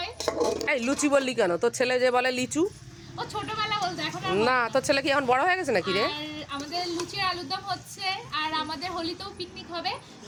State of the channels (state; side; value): identical; both; correlation 1.00